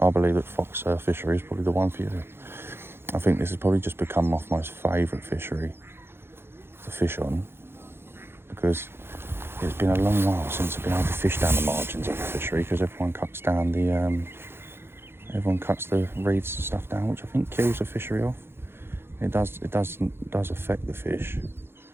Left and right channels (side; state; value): left; late; 0.11 ms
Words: I believe that Fox Fishery is probably the one for you. I think this has probably just become my most favourite fishery to fish on because it's been a long while since I've been able to fish down the margins of the fishery because everyone cuts down the reeds and stuff down, which I think kills the fishery off. It does affect the fish,